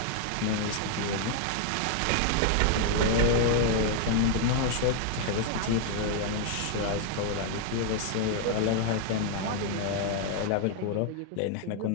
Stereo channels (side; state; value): both; different; correlation 0.00